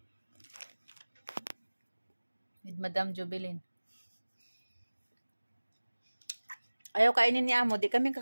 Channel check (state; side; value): inverted; both; correlation -1.00